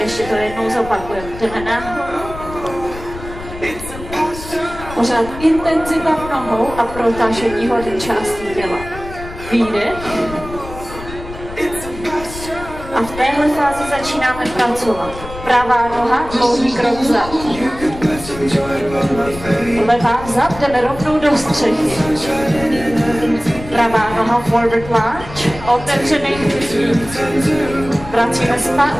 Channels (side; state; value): left; noise; rumble, 13 dB below the sound